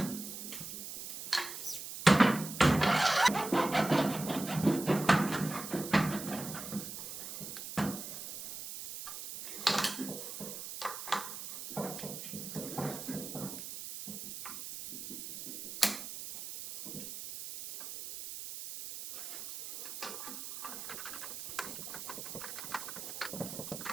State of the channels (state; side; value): noise; right; hiss, 8 dB below the sound